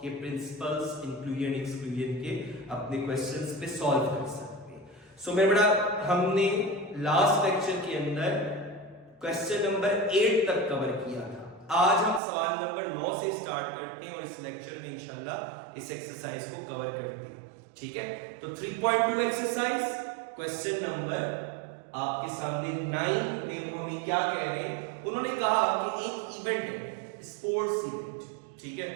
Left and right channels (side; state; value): left; drops out; at 12.2 s